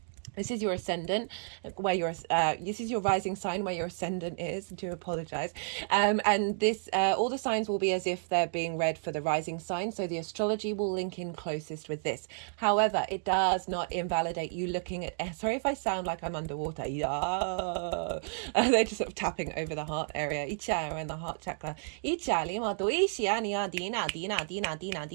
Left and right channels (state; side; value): silent; left; digital silence